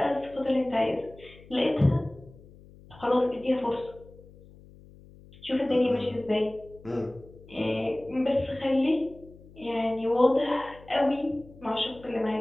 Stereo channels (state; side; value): noise; left; hum, 22 dB below the sound